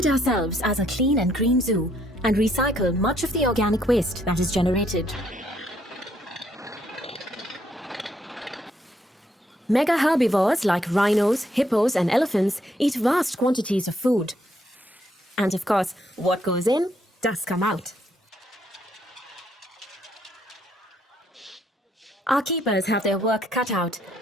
ourselves as a clean and green zoo and recycle much of the organic waste that is generated. Mega herbivores like rhinos, hippos, and elephants eat vast quantities of food. And of course, what goes in does come out. Our keepers have their work cut out,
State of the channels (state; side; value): normal; both; correlation 0.71